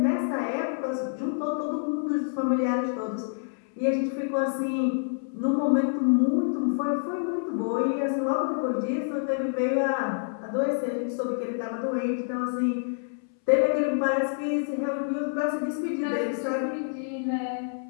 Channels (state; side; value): silent; right; 60 dB below the other